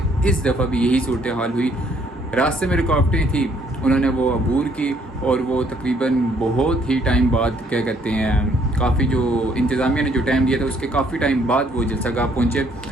इस दफ़ा भी यही सूरत हाल हुई। रास्ते में रुकावटें थी, उन्होंने वो अबूर की और वो तकरीबन बहुत ही टाइम बाद क्या कहते हैं, काफ़ी जो इंतज़ामिया ने जो टाइम दिया था उसके काफ़ी टाइम बाद वो जलसा गाह पहुँचे।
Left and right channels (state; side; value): normal; both; correlation 0.65